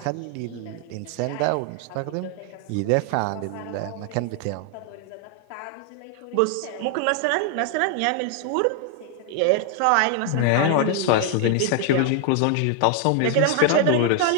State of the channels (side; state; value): both; different; correlation 0.00